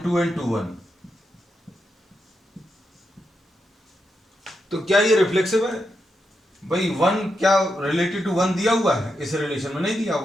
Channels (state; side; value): normal; both; correlation 0.85